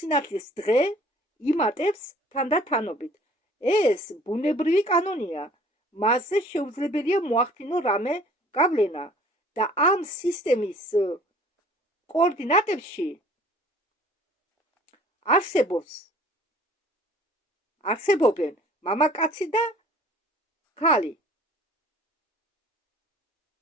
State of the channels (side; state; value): both; normal; correlation 0.52